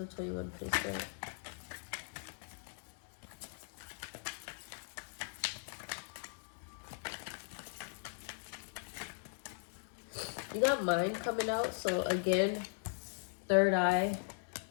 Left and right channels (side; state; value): right; silent; digital silence